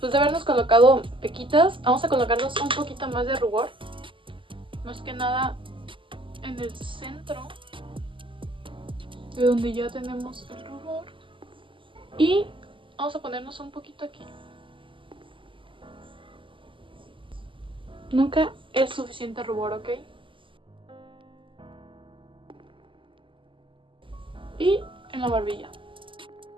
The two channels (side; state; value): left; late; 0.25 ms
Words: de habernos colocado pequitas, vamos a colocarnos un poquito más de rubor. Más que nada en el centro de donde ya tenemos el rubor. Y vamos a ponernos un poquito aquí. Nunca es suficiente rubor, ¿ok? Y en la barbilla.